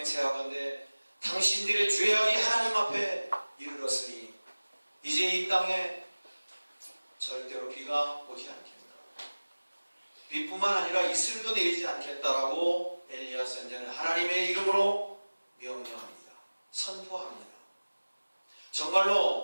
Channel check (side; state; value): both; inverted; correlation -1.00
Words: 당신들의 죄악이 하나님 앞에 이르렀으니 이제 이 땅에 절대로 비가 오지 않겠다. 비뿐만 아니라 이슬도 내리지 않겠다라고 엘리야 선지자는 하나님의 이름으로 명령합니다. 선포합니다.